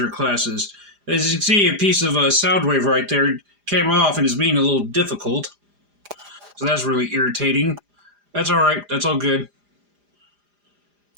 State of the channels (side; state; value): left; late; 4.9 ms